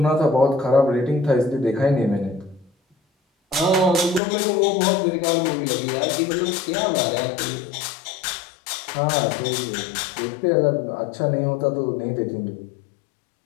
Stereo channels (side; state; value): right; drops out; at 4.2 s